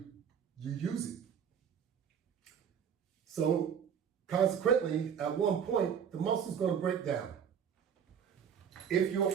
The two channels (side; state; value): left; quieter; 7.8 dB